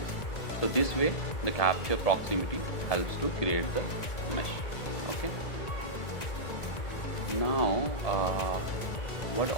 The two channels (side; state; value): right; late; 1.8 ms